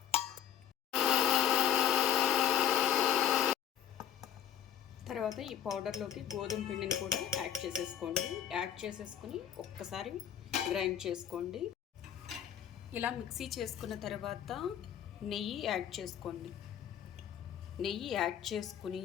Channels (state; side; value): quieter; right; 9.8 dB